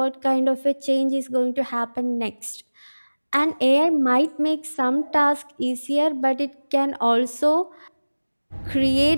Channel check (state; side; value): inverted; both; correlation -1.00